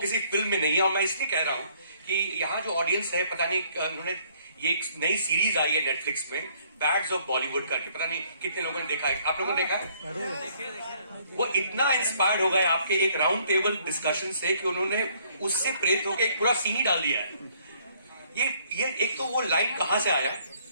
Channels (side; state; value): both; inverted; correlation -0.63